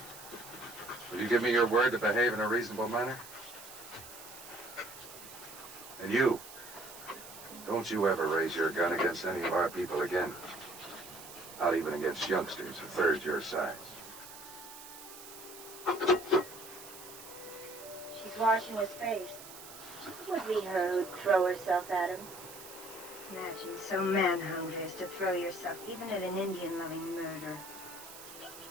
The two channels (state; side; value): noise; right; hiss, 15 dB below the sound